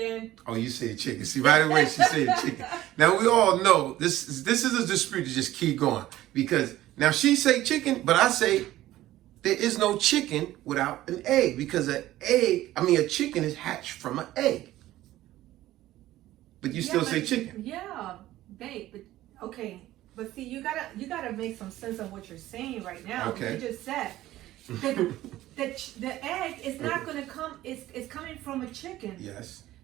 Oh, you said chicken. See, right away she said chicken. Now, we all know this is a dispute to just keep going. Because now she say chicken, but I say there is no chicken without an egg. Because a chicken is hatched from an egg. But you still say chicken. Yeah, babe. But okay. But see, you gotta make some sense of what you're saying right now. Okay. You just said the egg is not gonna come. It's coming from a chicken. Yes.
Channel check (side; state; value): left; quieter; 15.0 dB